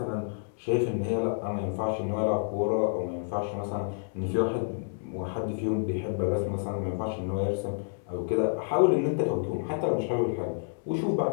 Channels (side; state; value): right; silent; digital silence